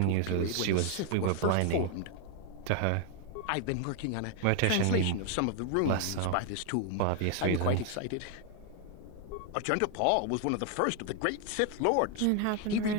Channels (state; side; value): different; both; correlation 0.00